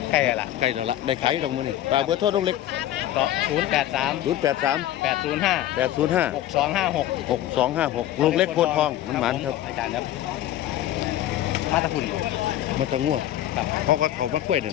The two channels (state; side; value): quieter; right; 13.1 dB